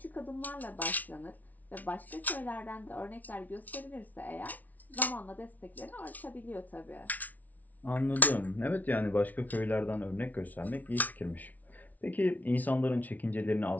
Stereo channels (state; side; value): late; right; 0.076 ms